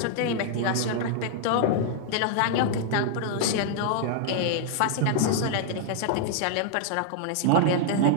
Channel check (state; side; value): different; both; correlation -0.01